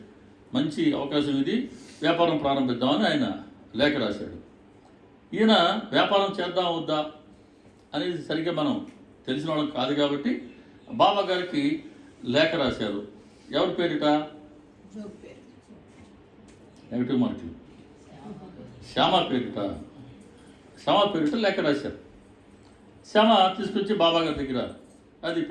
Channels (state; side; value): identical; both; correlation 1.00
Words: మంచి అవకాశం ఇది, వ్యాపారం ప్రారంభిద్దామని ఆయన లేఖ రాశాడు. ఈయన వ్యాపారం చేద్దాం వద్దా అనేది సరిగ్గా మనం తెలిసిన వాళ్ళం కాదు కాబట్టి బాబా గారికి లేఖ రాశారు. ఎవరి పేరిట? నెగిటివ్ మార్కులు. శ్యామ పేరిట లేఖ రాశారు. శ్యామ తీసుకొచ్చి బాబా గారి దగ్గర అది